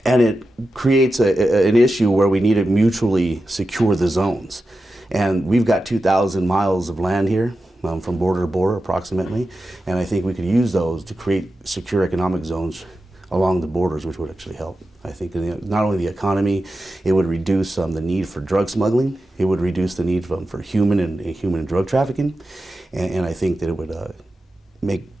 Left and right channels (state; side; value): normal; both; correlation 0.91